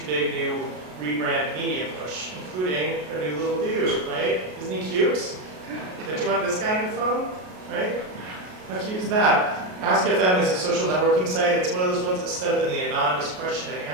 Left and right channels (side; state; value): left; late; 33 ms